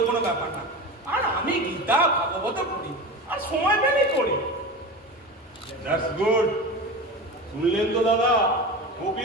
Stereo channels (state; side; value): normal; both; correlation 0.28